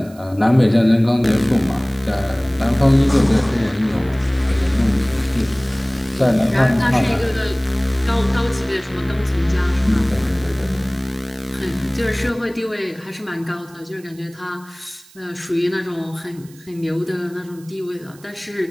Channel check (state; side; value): noise; right; hiss, 25 dB below the sound